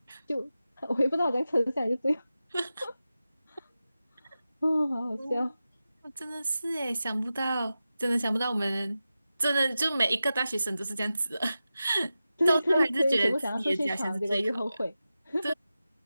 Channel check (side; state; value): both; inverted; correlation -0.93